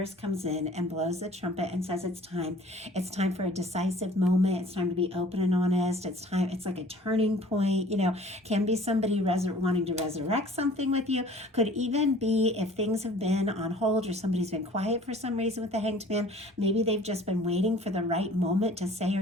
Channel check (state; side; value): normal; both; correlation 0.49